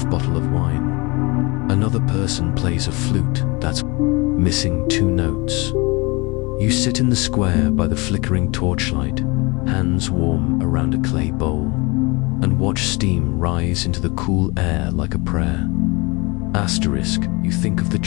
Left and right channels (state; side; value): quieter; right; 26.4 dB